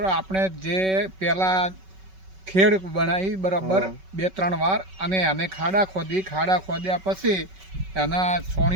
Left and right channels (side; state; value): left; late; 5.3 ms